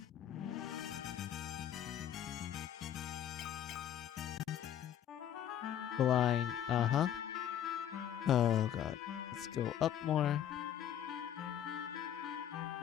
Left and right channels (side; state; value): right; quieter; 10.2 dB